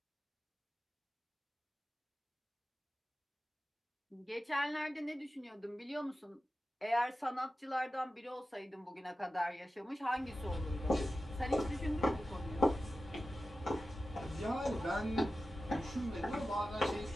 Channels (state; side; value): normal; both; correlation 0.93